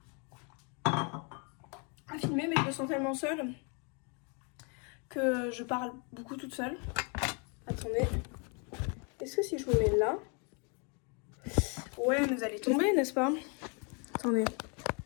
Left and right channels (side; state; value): right; quieter; 35.6 dB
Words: à filmer, mais je me sens tellement seule que je parle beaucoup toute seule. Attendez. Est-ce que si je vous mets là... Ouais, mais vous allez tomber, n'est-ce pas? Attendez.